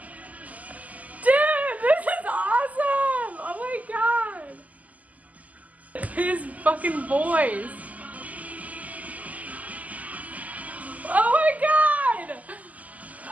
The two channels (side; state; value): left; late; 0.076 ms